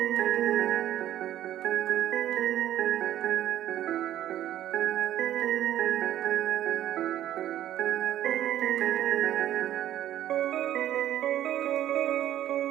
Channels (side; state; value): left; quieter; 12.3 dB